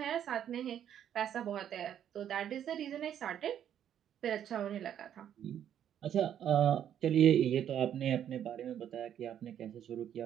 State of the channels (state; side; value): quieter; left; 9.9 dB